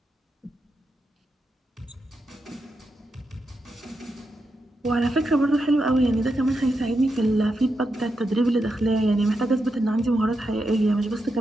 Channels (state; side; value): normal; both; correlation 0.86